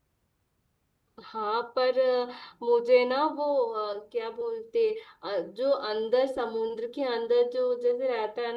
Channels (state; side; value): identical; both; correlation 1.00